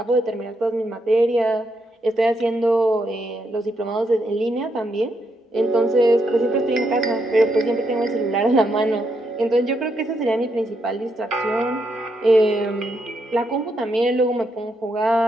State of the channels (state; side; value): normal; both; correlation 0.79